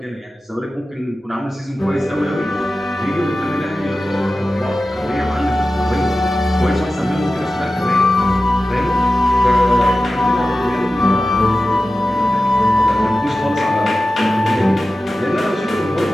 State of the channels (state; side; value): normal; both; correlation 0.94